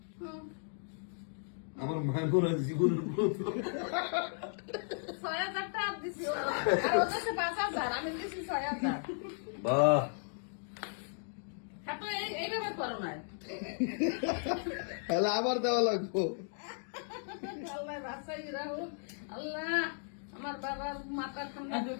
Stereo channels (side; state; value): right; silent; digital silence